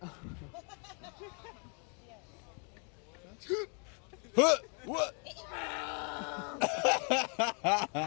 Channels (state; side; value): quieter; right; 38.2 dB